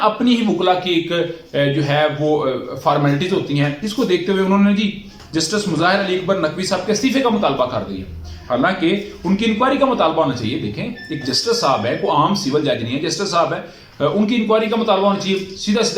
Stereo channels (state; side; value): identical; both; correlation 1.00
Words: अपनी ही वकला की एक जो है वो फॉर्मेलिटीज होती हैं। इसको देखते हुए उन्होंने जी जस्टिस मुजाहिर अली अकबर नकवी साहब के इस्तीफे का मुतालबा कर दिया। हालांकि उनकी इंक्वायरी का मुतालबा होना चाहिए। देखें, एक जस्टिस साहब है, कोई आम सिविल जज नहीं है, जस्टिस साहब है, उनकी इंक्वायरी का मुतालबा होना चाहिए। सीधा